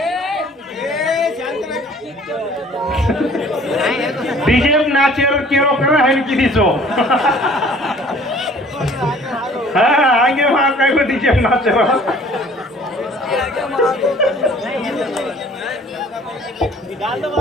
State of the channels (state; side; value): normal; both; correlation 0.53